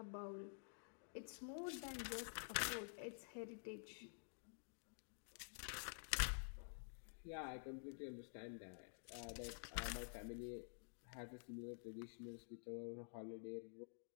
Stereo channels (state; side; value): silent; right; digital silence